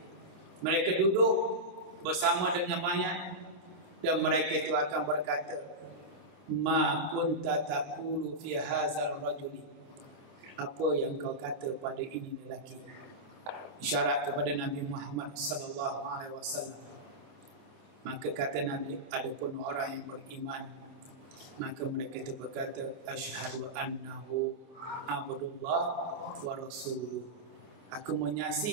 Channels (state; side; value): late; left; 27 ms